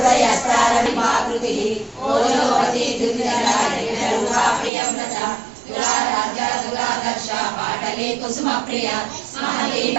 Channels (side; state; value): left; drops out; at 4.7 s